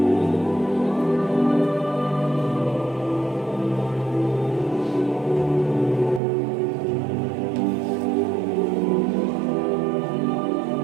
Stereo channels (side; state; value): left; drops out; at 6.2 s